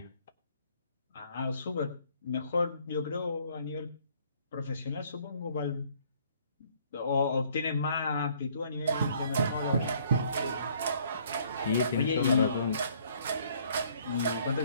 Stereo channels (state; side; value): inverted; both; correlation -0.61